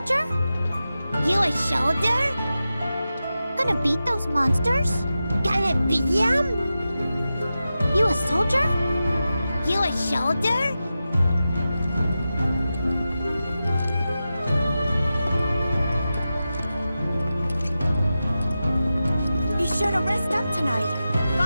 You a shoulder? Gonna beat those monsters? Gonna beat them? You a soldier? You a shoulder? Be sure to rest up tonight.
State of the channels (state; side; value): inverted; both; correlation -0.92